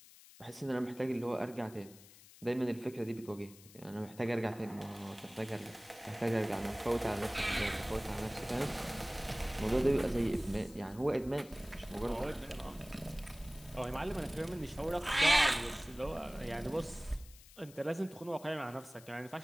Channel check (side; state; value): left; noise; hiss, 21 dB below the sound